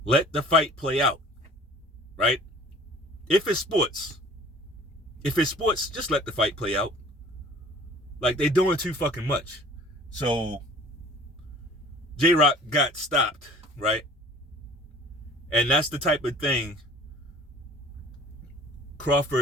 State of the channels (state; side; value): normal; both; correlation 0.48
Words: Let the fight play out, right? If it's sports, just let the fight play out. Like, they're doing too fucking much. So, J-Rock got stopped, right? And that's the type of thing